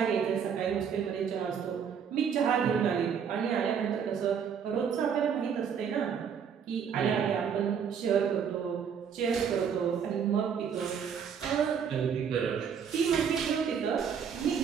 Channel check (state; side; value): quieter; left; 7.3 dB